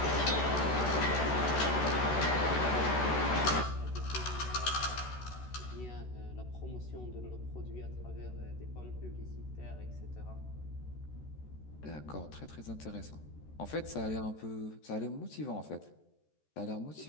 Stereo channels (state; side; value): late; right; 14 ms